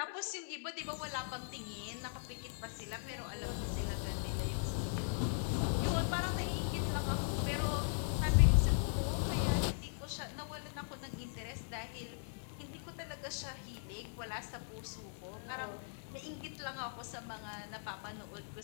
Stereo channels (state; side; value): silent; right; 52 dB below the other